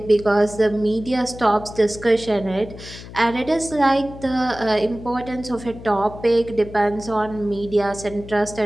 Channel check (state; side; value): noise; left; hum, 15 dB below the sound